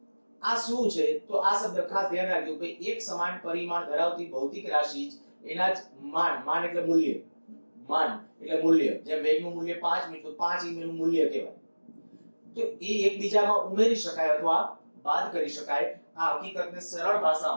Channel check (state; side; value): inverted; both; correlation -1.00